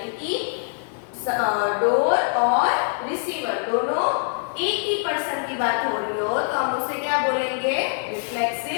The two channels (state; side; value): silent; right; digital silence